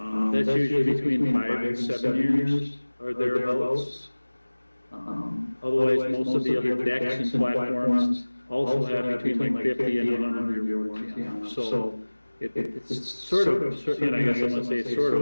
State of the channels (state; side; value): inverted; both; correlation -1.00